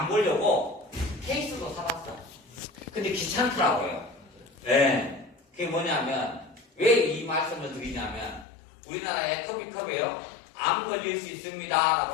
보려고 케이스도 사봤어. 근데 귀찮더라고요. 네. 그게 뭐냐면 왜 이 말씀을 드리냐면 우리나라에 커피컵에요. 암 걸릴 수 있습니다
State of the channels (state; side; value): drops out; right; at 8.5 s